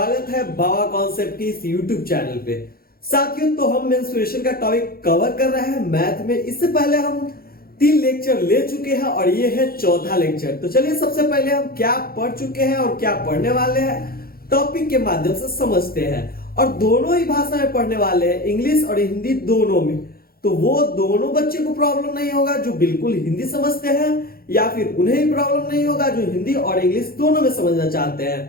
है बाबा कॉन्सेप्ट की इस यूट्यूब चैनल पे। साथियों तो हम मेंस्ट्रुएशन का टॉपिक कवर कर रहे हैं मैथ में। इससे पहले हम 3 लेक्चर ले चुके हैं और ये है चौथा लेक्चर। तो चलिए सबसे पहले हम क्या पढ़ चुके हैं और क्या पढ़ने वाले हैं टॉपिक के माध्यम से समझते हैं। और दोनों ही भाषा में पढ़ने वाले हैं, इंग्लिश और हिंदी दोनों में। तो वो दोनों बच्चे को प्रॉब्लम नहीं होगा जो बिल्कुल हिंदी समझते हैं, या फिर उन्हें ही प्रॉब्लम नहीं होगा जो हिंदी और इंग्लिश दोनों में समझना चाहते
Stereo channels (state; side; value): late; right; 0.44 ms